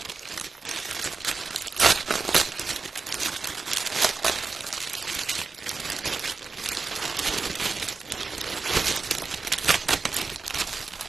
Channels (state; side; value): quieter; left; 4.3 dB